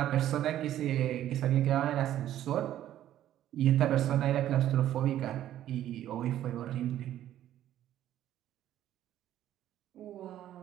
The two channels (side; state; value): left; quieter; 12.2 dB